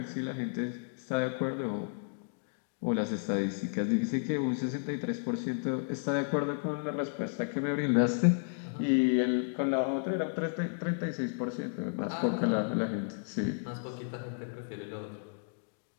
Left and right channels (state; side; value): silent; right; digital silence